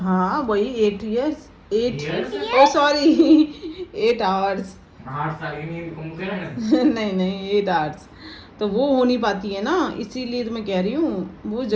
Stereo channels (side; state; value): both; identical; correlation 1.00